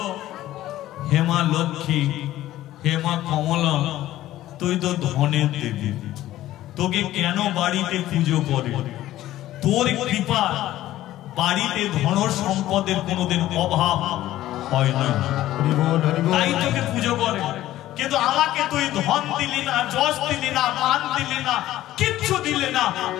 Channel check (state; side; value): quieter; right; 14.5 dB